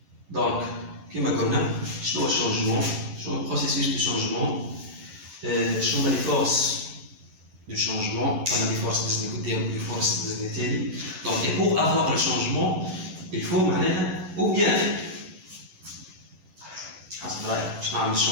دونك كيما قلنا شنو هو الشونجمون؟ شنو هو البروسيسوس دو شونجمون؟ شنو هما لي فورس du changement, on a des forces des forces des. Donc, et pour avoir le changement, il faut ou bien le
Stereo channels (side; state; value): left; late; 11 ms